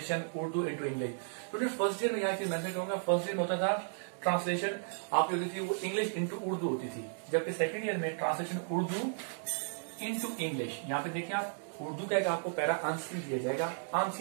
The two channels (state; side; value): silent; left; digital silence